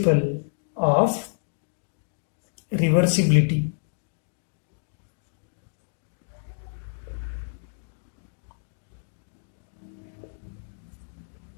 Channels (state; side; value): silent; right; digital silence